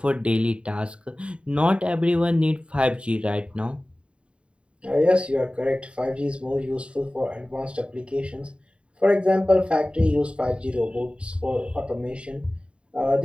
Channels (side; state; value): left; late; 0.056 ms